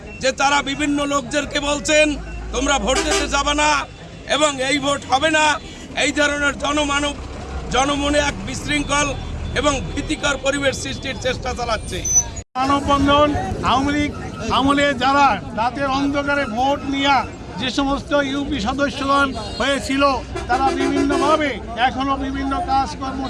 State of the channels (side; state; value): both; identical; correlation 1.00